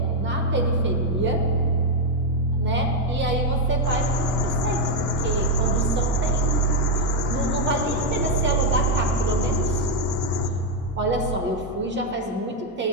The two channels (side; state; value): both; normal; correlation 0.02